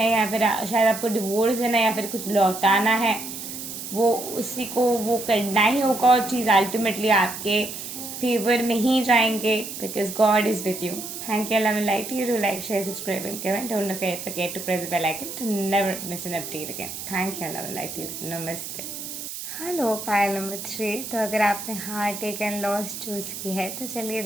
या फिर शायद आपको डिवोर्स देना या फिर कुछ लौटाना है, वो उसी को वो करना ही होगा, और चीज़ अल्टीमेटली आपके फेवर में ही जाएंगे, because God is with you. Thank you, love and light you, do like, share, subscribe and comment, don't forget to press the bell icon to never miss an update again. Thank you, love and light you, नमस्ते। Hello, pile number 3। तो अगर आपने heart take and loss choose की है, तो चलिए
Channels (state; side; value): noise; right; hiss, 8 dB below the sound